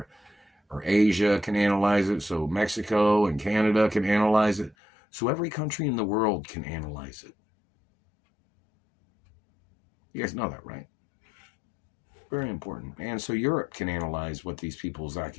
Asia can analyze it, so Mexico and Canada can analyze it, so every country in the world can analyze it. You guys know that, right? Very important. And so Europe can analyze what these people's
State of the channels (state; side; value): drops out; right; at 4.8 s